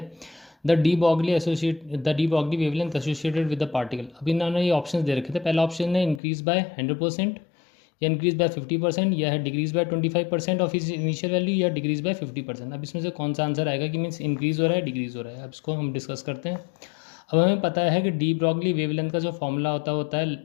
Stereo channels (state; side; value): drops out; right; at 6.2 s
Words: The de Broglie wavelength associated with the particle. अब इन्होंने ये ऑप्शन दे रखे थे। पहला ऑप्शन है इंक्रीज बाय 100%, या इंक्रीज बाय 50%, या है डिक्रीज बाय 25% ऑफ इस इनिशियल वैल्यू, या डिक्रीज बाय 50%। अब इसमें से कौन सा आंसर आएगा कि मीन्स इंक्रीज हो रहा है, डिक्रीज हो रहा है। अब इसको हम डिस्कस करते हैं। अब हमें पता है कि डी ब्रॉगली वेवलेंथ का जो फॉर्मूला होता है